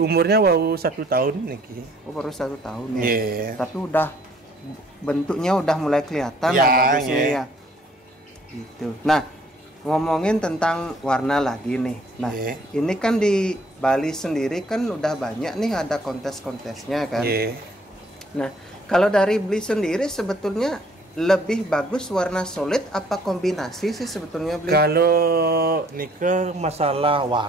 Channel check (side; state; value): both; normal; correlation 0.60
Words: baru 1 tahun niki. Oh, baru 1 tahun ya. Tapi udah bentuknya udah mulai kelihatan lah bagusnya ya. Gitu. Nah, ngomongin tentang warna lagi nih. Nah, ini kan di Bali sendiri kan udah banyak nih ada kontes-kontesnya kan. Nah, kalau dari Bli sendiri sebetulnya lebih bagus warna solid apa kombinasi sih sebetulnya Bli? Kalau nike masalah